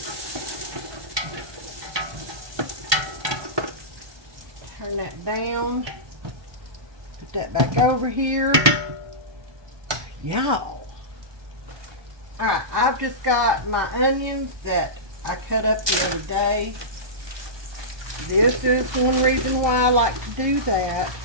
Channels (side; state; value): left; late; 1.2 ms